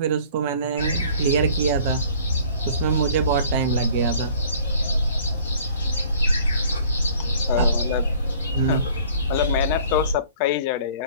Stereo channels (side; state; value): both; inverted; correlation -0.52